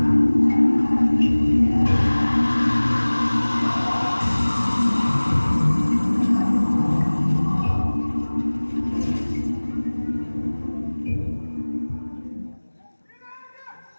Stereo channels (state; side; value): inverted; both; correlation -1.00